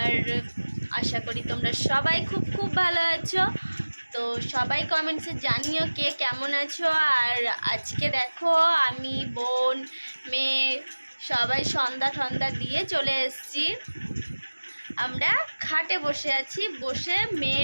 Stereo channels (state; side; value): inverted; both; correlation -1.00